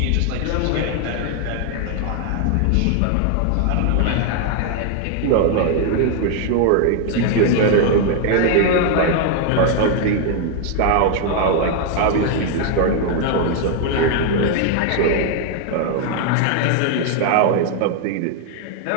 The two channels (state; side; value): different; both; correlation 0.00